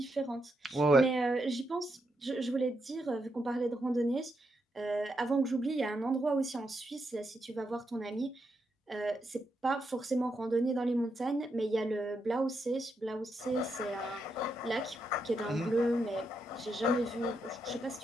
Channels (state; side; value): normal; both; correlation 0.82